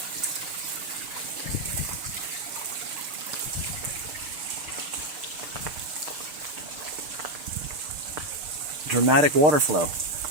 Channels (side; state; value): left; late; 6.6 ms